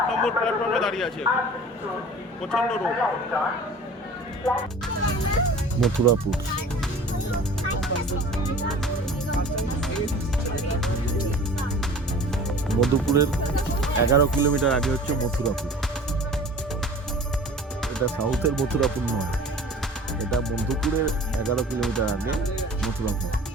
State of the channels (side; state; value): both; normal; correlation 0.43